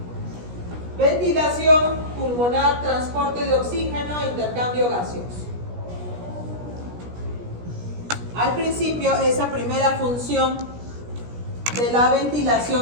Ventilación pulmonar, transporte de oxígeno, intercambio gaseoso. Al principio, esa primera función de la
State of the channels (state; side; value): late; left; 17 ms